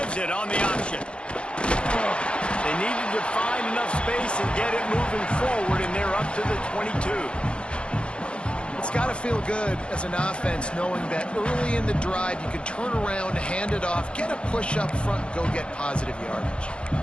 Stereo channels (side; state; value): right; late; 0.056 ms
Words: it on the option. They needed to find enough space and get it moving forward, and they're up to the 22. It's got to feel good as an offense knowing that early in the drive you can turn around, hand it off, get a push up front, and go get positive yardage.